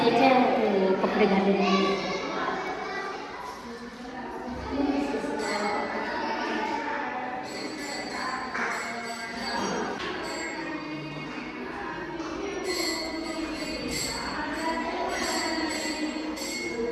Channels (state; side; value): identical; both; correlation 1.00